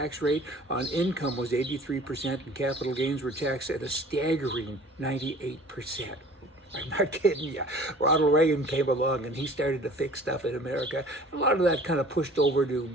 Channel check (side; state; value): both; normal; correlation 0.48